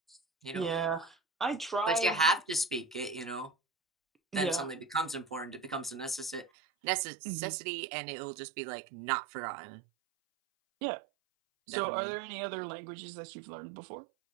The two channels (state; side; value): drops out; left; at 6.5 s